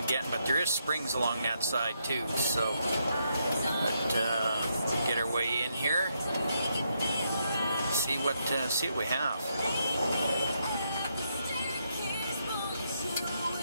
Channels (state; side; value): inverted; both; correlation -0.78